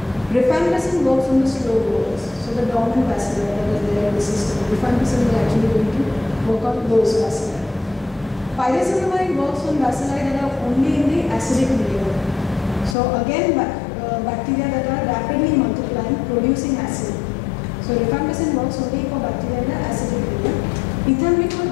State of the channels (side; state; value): right; drops out; at 13.0 s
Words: Rifampicin works on the slow growers. So the dormant bacilli that is there in the system. Rifampicin is actually going to work on those bacilli. Pyrazinamide works on bacilli that are only in the acidic medium. So again, bacteria that are rapidly multiplying, producing acid. So rifampicin works only for bacteria in the acidic medium. Ethambutol,